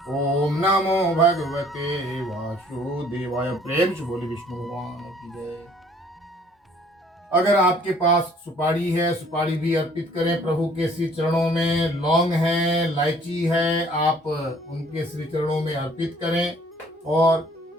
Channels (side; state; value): both; normal; correlation 0.58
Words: ओम नमो भगवते वासुदेवाय। प्रेम से बोले विष्णु भगवान की जय। अगर आपके पास सुपारी है, सुपारी भी अर्पित करें प्रभु के श्री चरणों में। लौंग है, इलायची है, आप उनके श्री चरणों में अर्पित करें। और